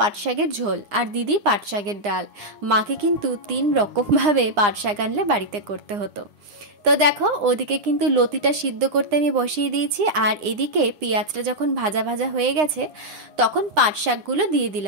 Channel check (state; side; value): late; left; 9.8 ms